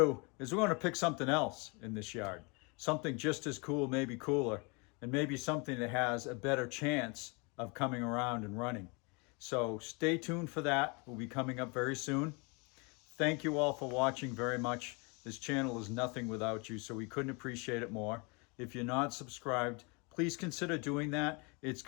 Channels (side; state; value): right; quieter; 30.6 dB